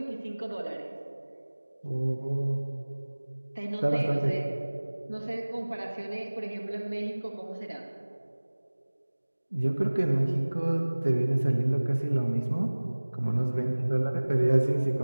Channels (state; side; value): inverted; both; correlation -1.00